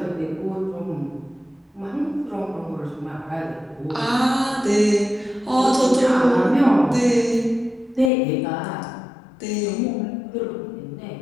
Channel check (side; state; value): right; drops out; at 8.1 s